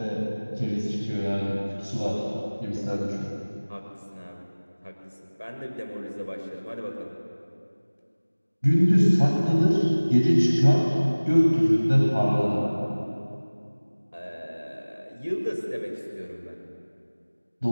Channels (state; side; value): inverted; both; correlation -1.00